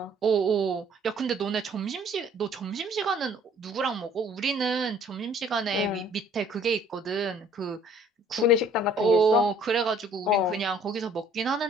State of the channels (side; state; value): both; normal; correlation 0.56